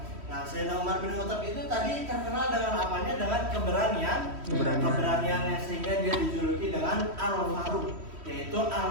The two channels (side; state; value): left; late; 3.1 ms